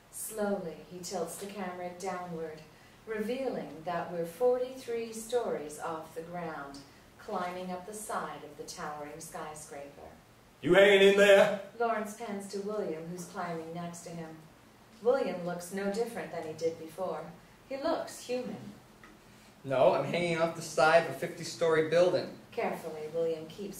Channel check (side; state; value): both; identical; correlation 1.00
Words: Slowly, he tilts the camera downward, revealing that we're 43 stories off the ground, climbing up the side of the towering skyscraper. You hanging in there? Lawrence pans to William, who's climbing next to him. William looks no different than he did before. He looks human. No, I'm hanging off the side of a 50-story building. Carefully, William